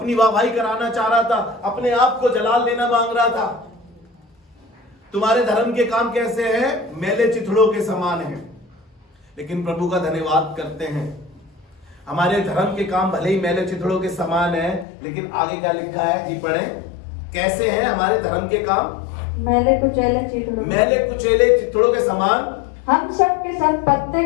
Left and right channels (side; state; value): right; drops out; at 14.9 s